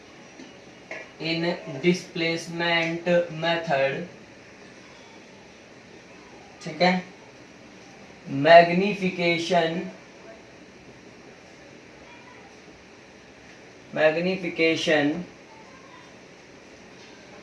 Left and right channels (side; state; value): both; identical; correlation 1.00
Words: इन डिस्प्लेसमेंट मेथड, ठीक है, magnification